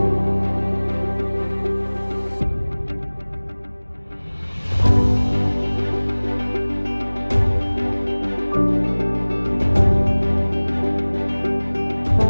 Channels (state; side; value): inverted; both; correlation -1.00